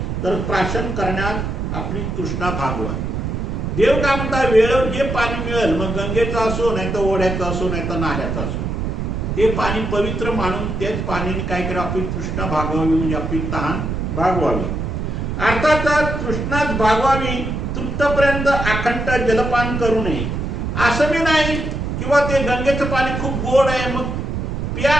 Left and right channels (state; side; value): noise; right; rumble, 3 dB below the sound